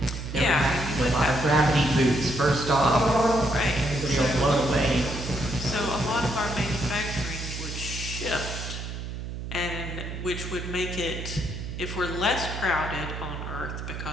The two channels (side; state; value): right; noise; hum, 7 dB below the sound